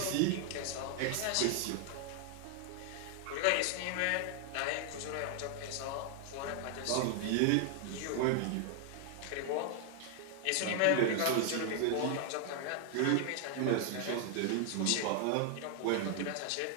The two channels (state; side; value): different; both; correlation 0.00